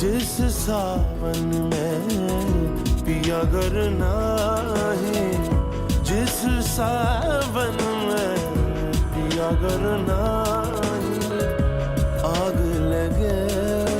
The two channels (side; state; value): both; identical; correlation 1.00